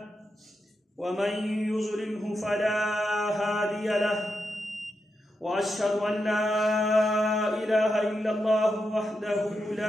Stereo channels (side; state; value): both; normal; correlation 0.86